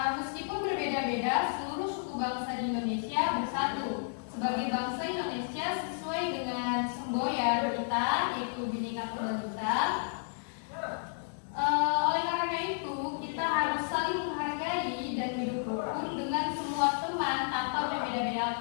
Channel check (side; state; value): right; silent; 56 dB below the other